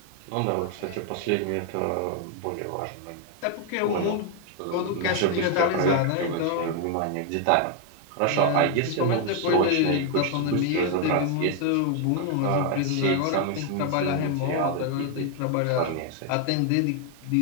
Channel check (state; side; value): different; both; correlation 0.00